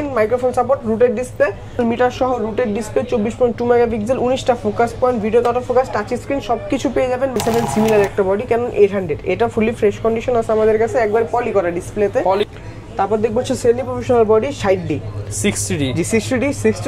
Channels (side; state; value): both; identical; correlation 1.00